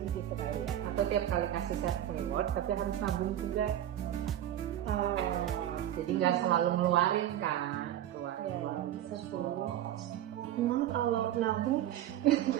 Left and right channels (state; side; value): quieter; left; 11.9 dB